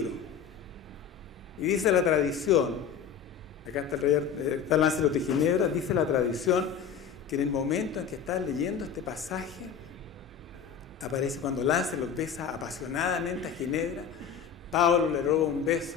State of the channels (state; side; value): quieter; right; 7.3 dB